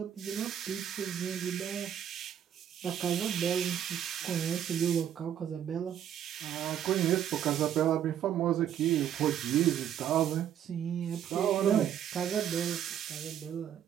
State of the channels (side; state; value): left; quieter; 9.8 dB